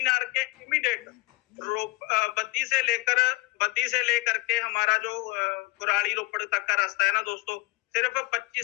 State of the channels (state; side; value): quieter; right; 23.8 dB